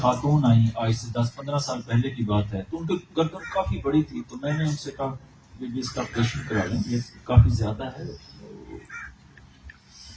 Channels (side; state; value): both; identical; correlation 1.00